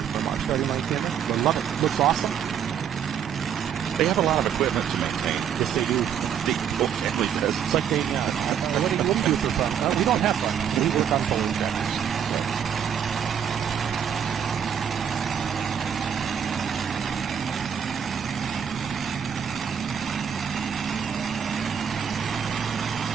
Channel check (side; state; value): left; quieter; 8.3 dB